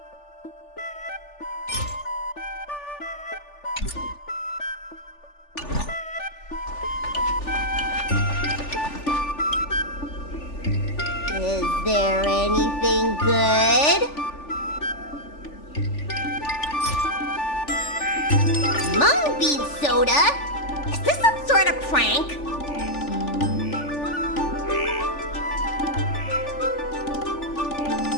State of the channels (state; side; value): late; right; 3.4 ms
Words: Is there anything good? Mung bean soda? Is this some sort of prank?